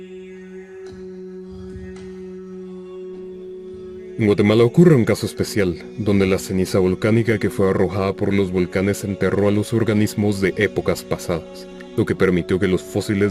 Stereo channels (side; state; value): both; identical; correlation 1.00